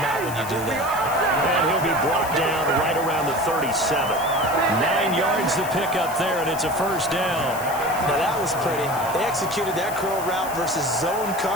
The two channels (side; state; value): left; noise; hiss, 13 dB below the sound